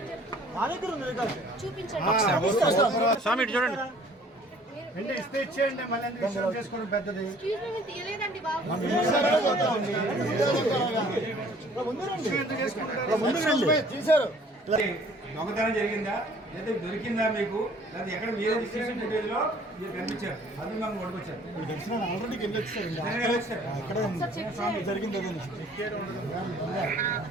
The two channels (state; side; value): normal; both; correlation 0.55